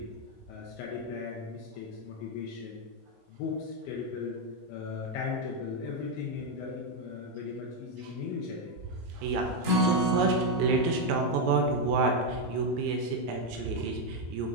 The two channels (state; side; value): normal; both; correlation 0.03